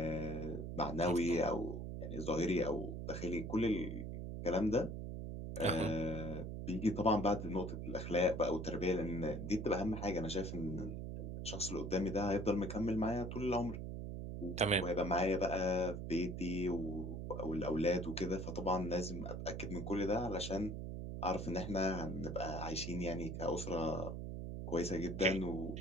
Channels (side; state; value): right; noise; hum, 5 dB below the sound